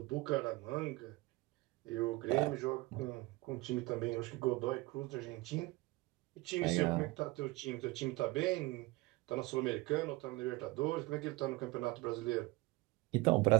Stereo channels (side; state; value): left; quieter; 21.3 dB